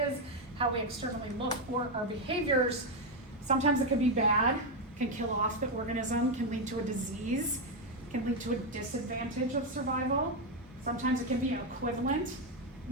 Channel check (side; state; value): both; normal; correlation 0.05